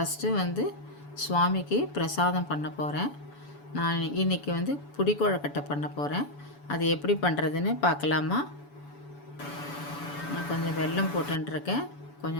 சுவாமிக்கு பிரசாதம் பண்ண போகிறேன். நான் இன்றைக்கி புடிக்கொழுக்கட்டை பண்ண போகிறேன். அது எப்படி பண்ணுறதுன்னு பார்க்கலாமா? நான் கொஞ்சம் வெல்லம் போட்டுருக்கேன்.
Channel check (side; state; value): right; late; 7.0 ms